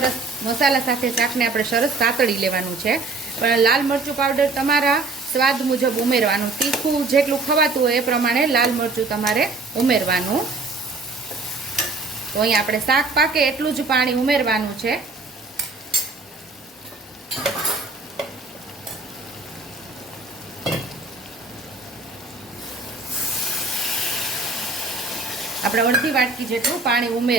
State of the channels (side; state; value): left; quieter; 3.6 dB